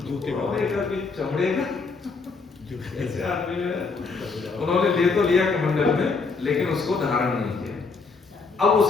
चमड़े का ऐसे आदमी उन्होंने ले तो लिया कमंडल में, लेकिन उसको धारण नहीं किया। अब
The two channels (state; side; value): quieter; right; 4.5 dB